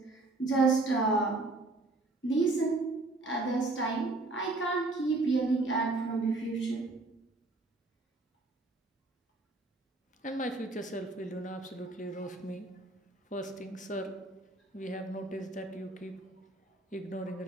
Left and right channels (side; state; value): left; quieter; 3.1 dB